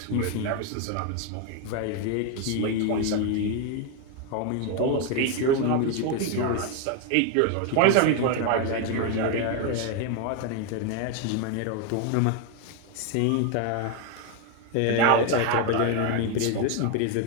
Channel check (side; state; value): both; different; correlation 0.01